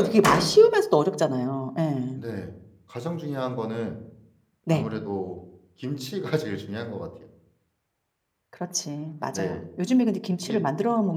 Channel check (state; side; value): identical; both; correlation 1.00